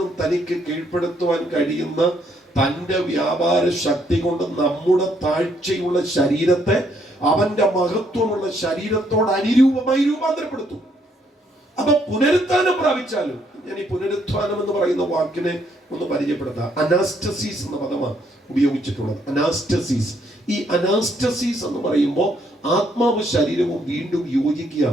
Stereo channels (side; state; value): both; normal; correlation 0.71